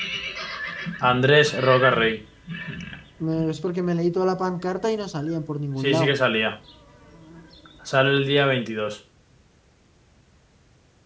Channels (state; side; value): identical; both; correlation 1.00